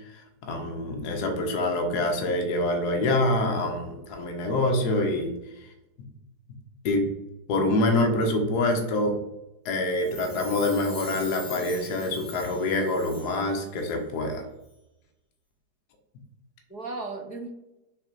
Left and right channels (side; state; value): right; late; 4.8 ms